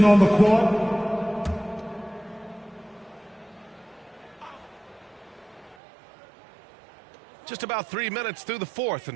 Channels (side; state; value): left; drops out; at 5.8 s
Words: on the court. Just about 3 minutes through the fourth